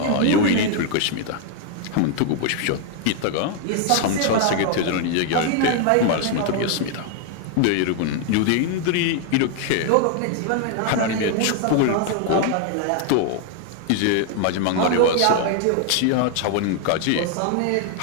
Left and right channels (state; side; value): different; both; correlation 0.00